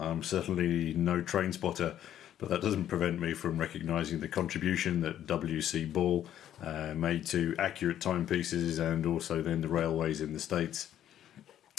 certainly no train spotter, but that doesn't prevent me from recognising the contribution that W.C. Ball made to accurate timepieces and also then the railways in the States.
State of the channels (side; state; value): right; quieter; 11.1 dB